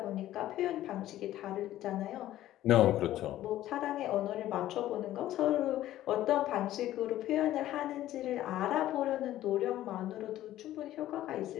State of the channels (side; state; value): right; quieter; 13.8 dB